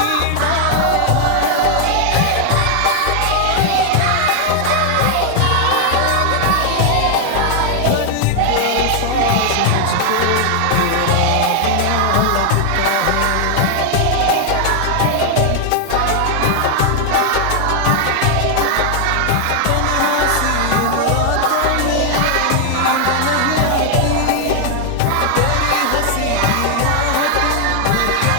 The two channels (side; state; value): both; different; correlation 0.00